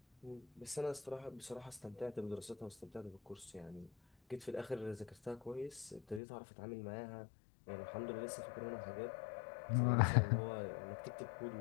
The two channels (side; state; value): right; drops out; at 6.2 s